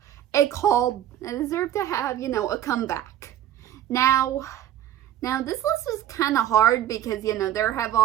a comeback. Now this list is kind of hard because, there have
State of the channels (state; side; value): quieter; left; 11.8 dB